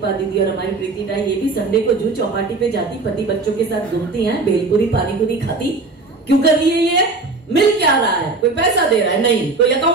दीदी और हमारी प्रीति टाई, ये भी संडे को जू चौपाटी पे जाती, पति बच्चों के साथ घूमती हैं, भेलपुरी पानी पूरी खाती। क्यों कर रही है ये? मिल क्या रहा है? कोई पैसा दे रहा है? नहीं। कोई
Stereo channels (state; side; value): quieter; left; 3.6 dB